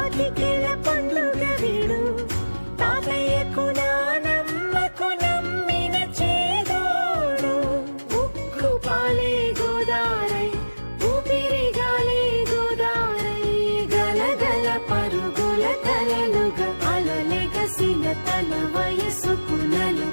పండుగ వీడు తాతయ్యకు నానమ్మకు నమ్మిన చేదోడు ఉక్కు పాలే గోదారై ఊపిరిగాలే గోదారై గలగల పరుగుల కలలుగా అలలెగసిన తన వయసుకు నలు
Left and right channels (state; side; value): inverted; both; correlation -1.00